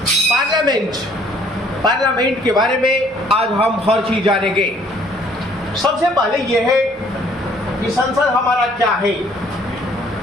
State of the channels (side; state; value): both; normal; correlation 0.61